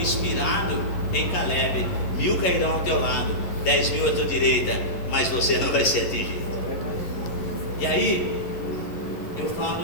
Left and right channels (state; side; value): late; right; 11 ms